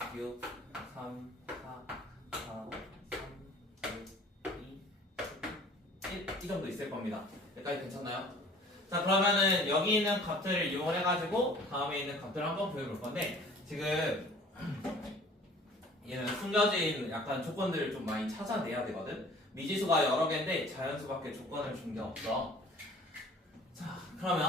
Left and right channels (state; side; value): normal; both; correlation 0.49